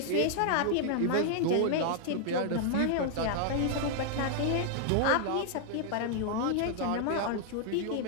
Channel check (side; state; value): both; different; correlation 0.00